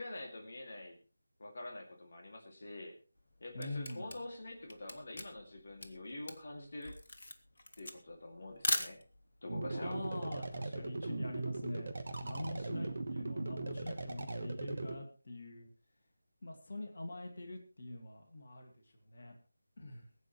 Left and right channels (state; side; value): inverted; both; correlation -0.93